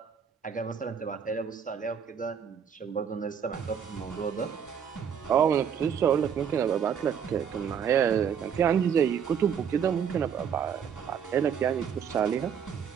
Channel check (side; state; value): left; quieter; 7.7 dB